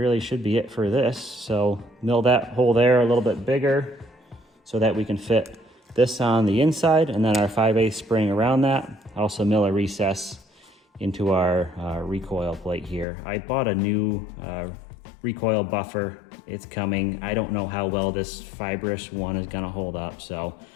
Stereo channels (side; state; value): right; drops out; at 13.1 s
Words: should be it for this. So mill that hole there a little bit bigger so that we can fit this on the inside, and then our 5/8 spring around that. Also mill a recess into our recoil plate here. I bought a new recoil buffer. It's coming. I don't know how well this fibrous one is going to hold up, so